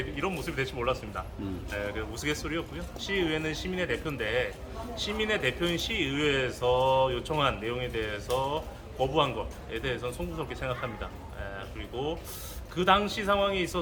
모습이 될지 몰랐습니다. 우스갯소리였고요. 시의회는 시민의 대표인데 시민의 대표인 시의회에서 요청한 내용에 대해서 거부한 것에 대해서는 송구스럽게 생각합니다. 그리고 그 당시 상황에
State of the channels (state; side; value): identical; both; correlation 1.00